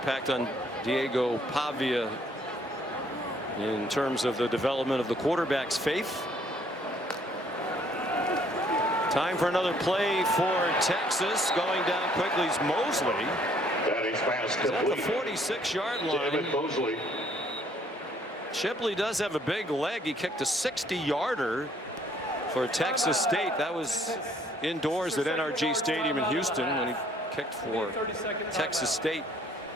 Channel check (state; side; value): normal; both; correlation 0.63